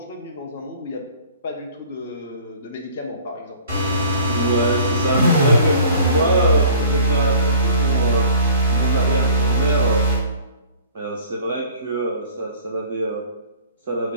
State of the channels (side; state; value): both; inverted; correlation -0.48